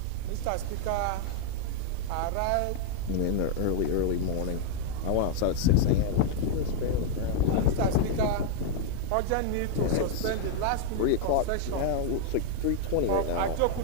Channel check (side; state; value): both; different; correlation 0.00